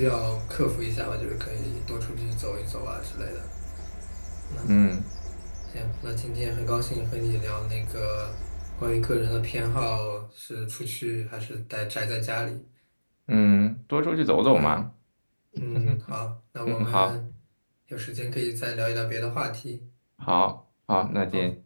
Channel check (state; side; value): inverted; both; correlation -1.00